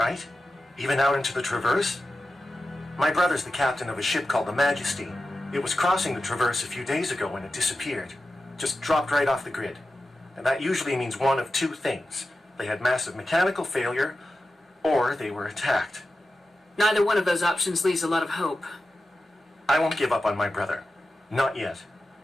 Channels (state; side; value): normal; both; correlation 0.93